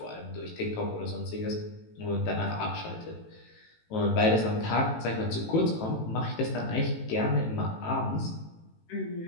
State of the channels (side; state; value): right; late; 18 ms